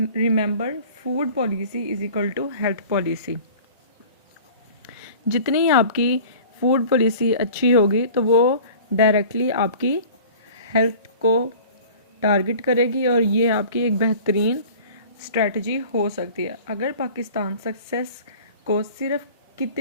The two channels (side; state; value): both; inverted; correlation -0.44